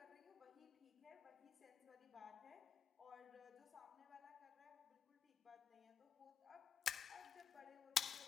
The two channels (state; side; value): quieter; right; 7.4 dB